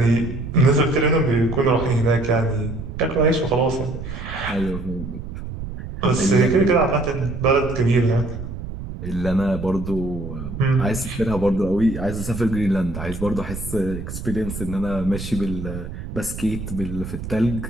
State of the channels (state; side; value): noise; right; rumble, 8 dB below the sound